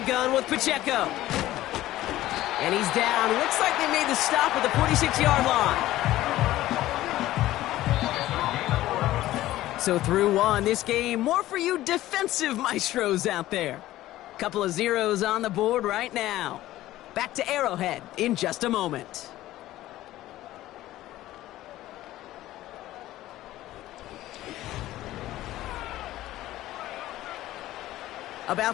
gun with Pacheco. And he's down. Looks like they made the stop at the 46-yard line. So through one, this game, more for you defensive maestros out there. Couple of zeros on the board right now. Back to Arrowhead in just a moment.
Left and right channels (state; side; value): quieter; right; 15.3 dB